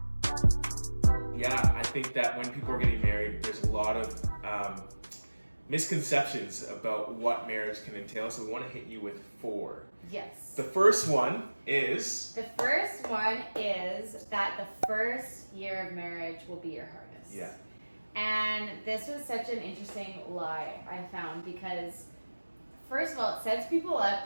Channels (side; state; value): both; inverted; correlation -1.00